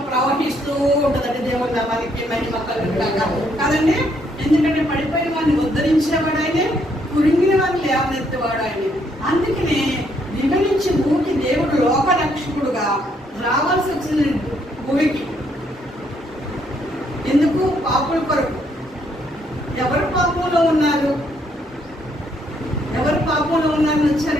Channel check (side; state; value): both; normal; correlation 0.71